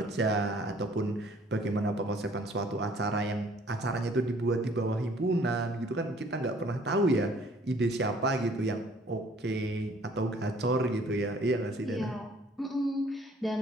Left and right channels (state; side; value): normal; both; correlation 0.58